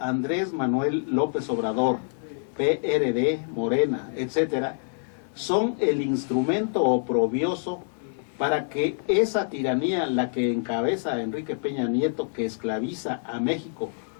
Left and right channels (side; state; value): right; silent; digital silence